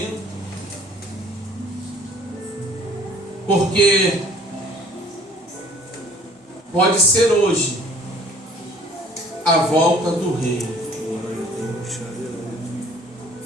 Porque pode ser hoje a volta do Rei.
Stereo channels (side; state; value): both; normal; correlation 0.54